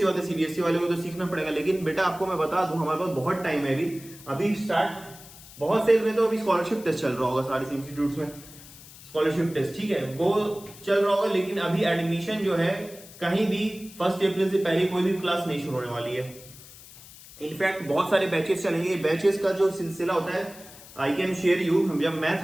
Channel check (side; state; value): left; noise; hiss, 19 dB below the sound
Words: बात है सीबीएसई वाले को तो सीखना पड़ेगा। लेकिन बेटा आपको मैं बता दूं, हमारे पास बहुत टाइम है अभी स्टार्ट, बहुत से में तो अभी स्कॉलरशिप टेस्ट चल रहा होगा सारे इंस्टीट्यूट्स में, स्कॉलरशिप टेस्ट, ठीक है, वो चल रहा होगा। लेकिन अभी एडमिशन जो है कहीं भी 1 अप्रैल से पहले कोई भी क्लास नहीं शुरू होने वाली है। इनफैक्ट बहुत सारे बैचेस चलेंगे। बैचेस का जो सिलसिला होता है, आई कैन शेयर यू, जब मैं